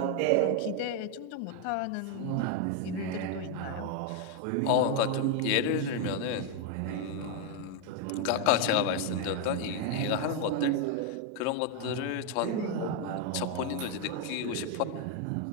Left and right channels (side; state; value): both; different; correlation 0.01